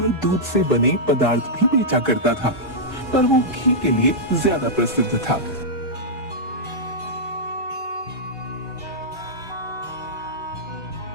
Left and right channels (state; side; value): normal; both; correlation -0.10